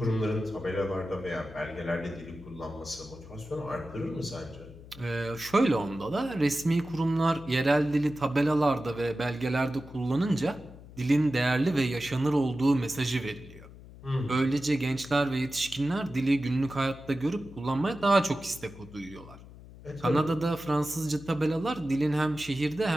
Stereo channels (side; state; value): left; noise; hum, 18 dB below the sound